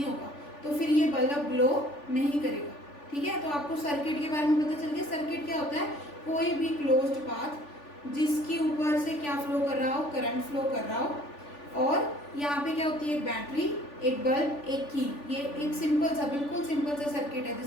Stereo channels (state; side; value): late; right; 3.4 ms